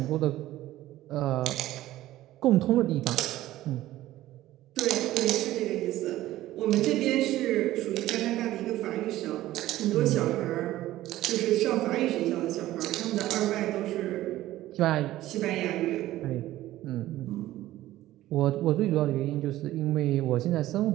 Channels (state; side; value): quieter; left; 15.2 dB